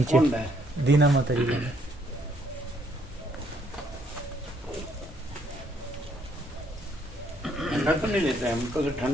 दीना माता जी का। ठंडा तो नहीं लेता है हमको, तो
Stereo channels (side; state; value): both; normal; correlation 0.68